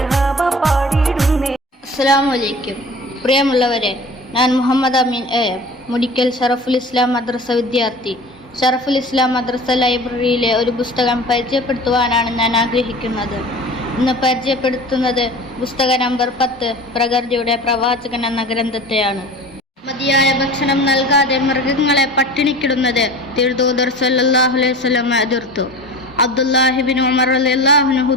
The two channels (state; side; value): normal; both; correlation 0.38